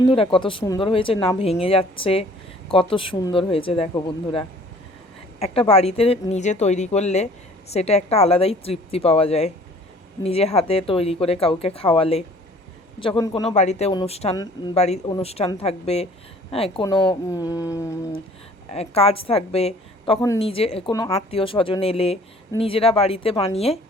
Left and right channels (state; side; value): normal; both; correlation 0.52